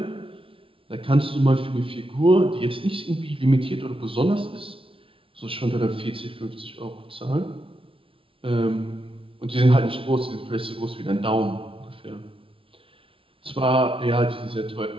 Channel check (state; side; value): late; left; 0.26 ms